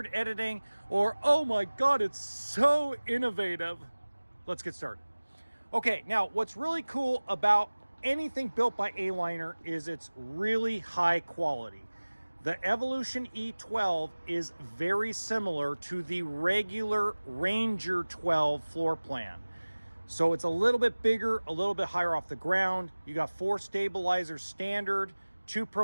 editing, or oh my God, it's so innovative. Let's get started. Okay, now what's really cool about anything built by A-Liner is it's really high quality. The Evolution E12 is very similar to the regular Ranger 12 floor plan. So it's a little bit bigger, a little bit higher off the ground. You got 4 stabilizers standard, 2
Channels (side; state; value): both; inverted; correlation -1.00